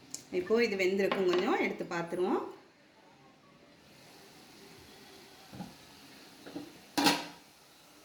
இப்போது இது வெந்திருக்கும். கொஞ்சம் எடுத்து பார்த்துருவோம்.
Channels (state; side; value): identical; both; correlation 1.00